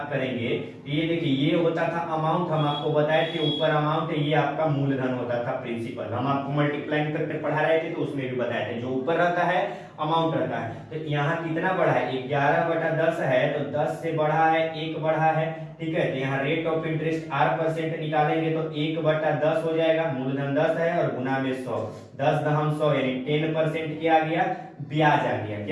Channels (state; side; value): identical; both; correlation 1.00